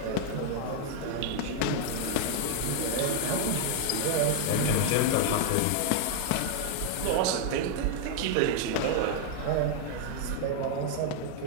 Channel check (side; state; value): both; different; correlation 0.00